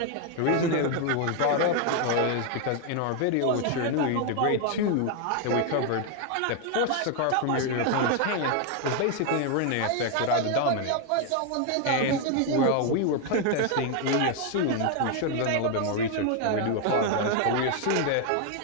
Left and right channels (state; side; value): different; both; correlation 0.01